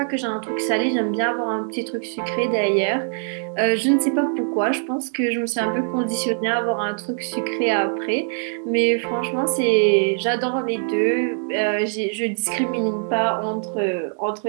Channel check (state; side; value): silent; left; 63 dB below the other